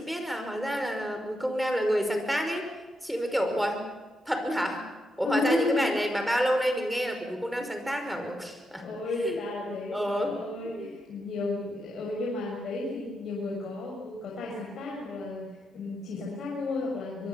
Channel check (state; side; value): normal; both; correlation 0.83